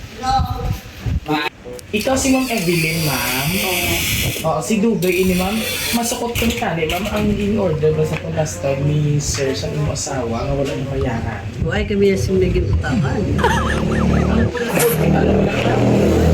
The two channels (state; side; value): identical; both; correlation 1.00